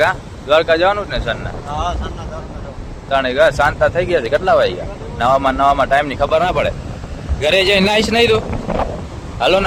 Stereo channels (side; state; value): both; identical; correlation 1.00